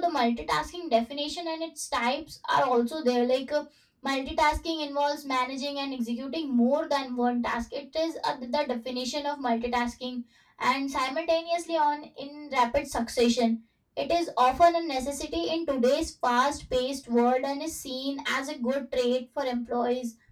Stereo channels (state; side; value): identical; both; correlation 1.00